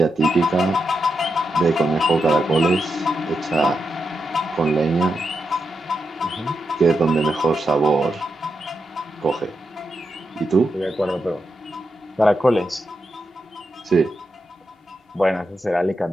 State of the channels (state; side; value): normal; both; correlation 0.86